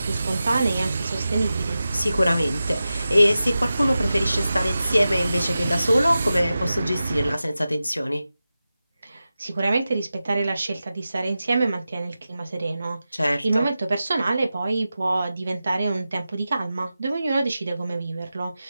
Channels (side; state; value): both; inverted; correlation -0.93